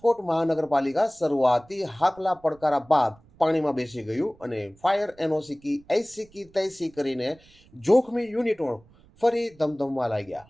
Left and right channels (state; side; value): noise; right; rumble, 28 dB below the sound